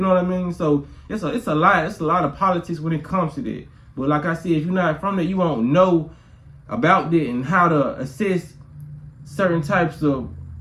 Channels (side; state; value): both; identical; correlation 1.00